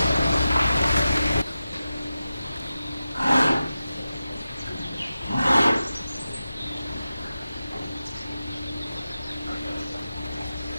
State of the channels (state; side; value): inverted; both; correlation -0.93